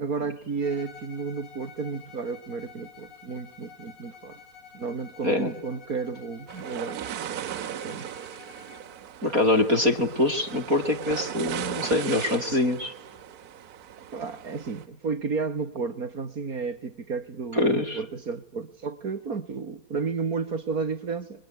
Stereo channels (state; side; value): late; left; 4.2 ms